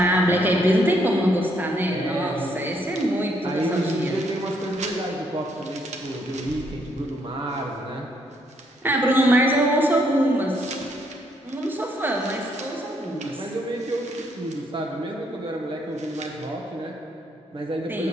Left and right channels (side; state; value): both; normal; correlation 0.72